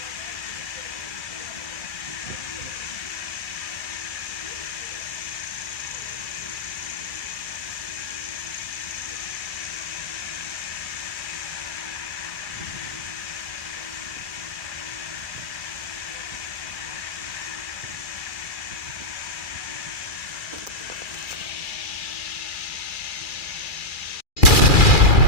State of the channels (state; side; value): late; right; 2.4 ms